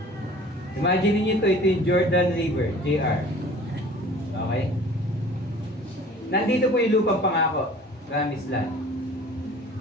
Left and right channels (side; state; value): both; normal; correlation 0.47